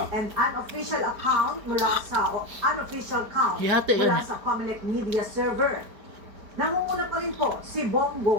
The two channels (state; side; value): late; left; 4.6 ms